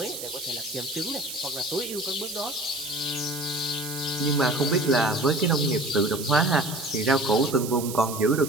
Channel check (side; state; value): right; noise; hiss, 9 dB below the sound